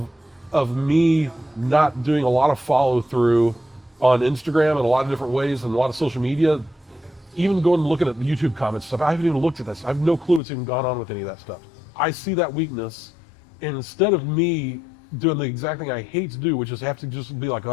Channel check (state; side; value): drops out; right; at 10.4 s